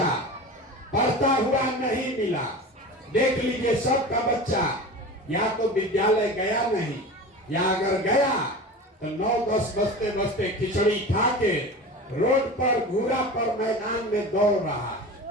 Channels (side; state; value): both; normal; correlation 0.32